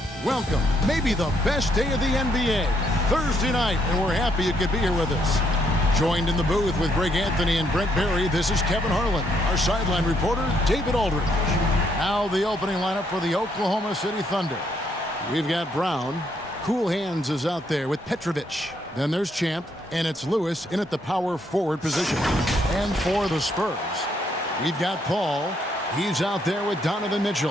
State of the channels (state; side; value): normal; both; correlation 0.73